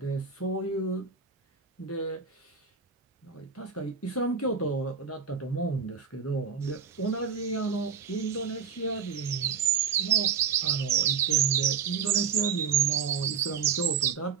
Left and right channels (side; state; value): left; quieter; 6.5 dB